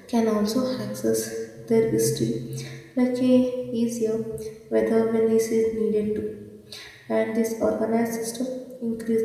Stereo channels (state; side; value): identical; both; correlation 1.00